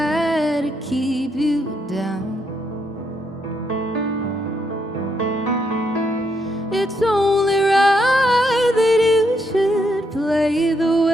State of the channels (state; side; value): normal; both; correlation 0.77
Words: to keep you down? It's only right that you should play the